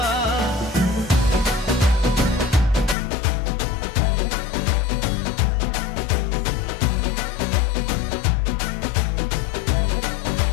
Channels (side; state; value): right; drops out; at 3.0 s